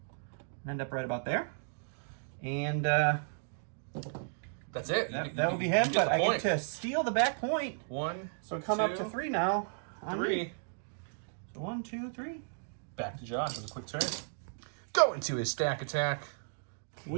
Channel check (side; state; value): left; silent; digital silence